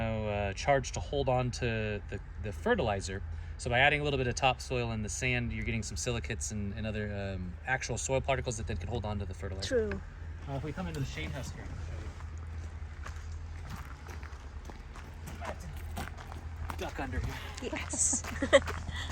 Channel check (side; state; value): both; identical; correlation 1.00